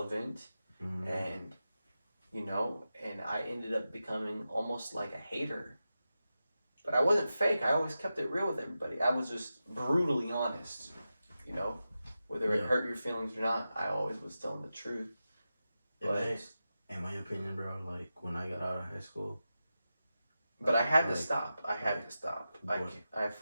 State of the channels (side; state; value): both; inverted; correlation -0.92